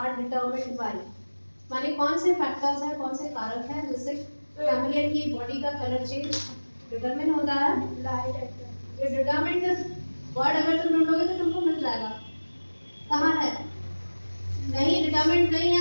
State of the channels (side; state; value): both; inverted; correlation -1.00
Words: determined by. माने कौन से फैक्टर्स हैं, कौन से कारक हैं जिससे कैमलियन की बॉडी का कलर चेंज डिटरमिन होता है? Light. ये डिटरमिन्ड वर्ड अगर तुम ढूंढोगे तो तुमको मिल जाएगा। कहाँ है? नहीं, डिटरमिन्ड नहीं